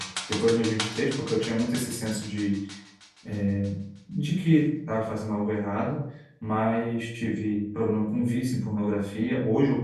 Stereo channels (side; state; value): both; identical; correlation 1.00